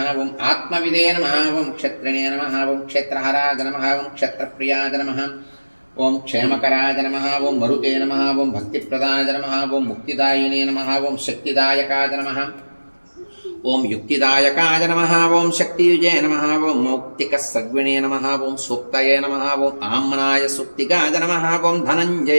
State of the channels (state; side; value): inverted; both; correlation -1.00